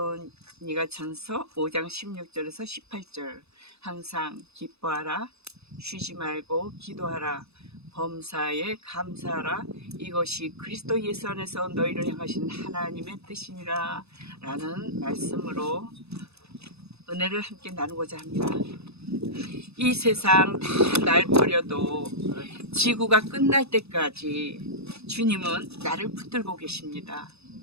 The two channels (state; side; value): late; left; 0.79 ms